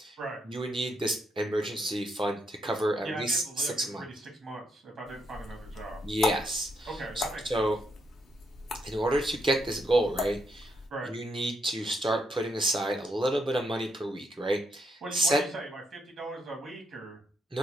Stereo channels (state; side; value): normal; both; correlation 0.77